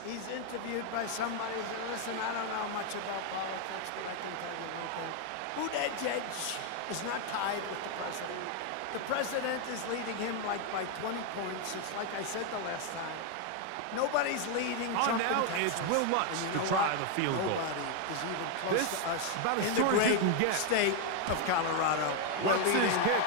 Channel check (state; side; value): different; both; correlation 0.01